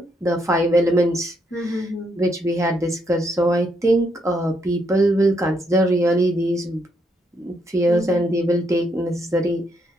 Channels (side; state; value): both; normal; correlation 0.75